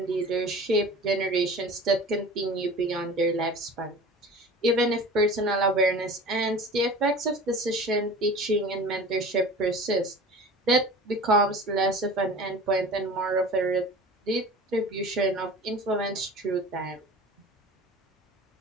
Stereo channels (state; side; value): normal; both; correlation 0.39